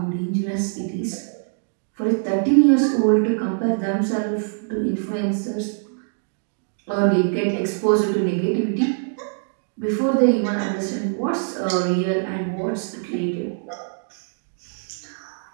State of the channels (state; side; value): silent; left; digital silence